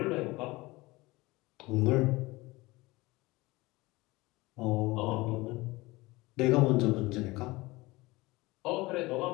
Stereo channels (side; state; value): right; quieter; 21.5 dB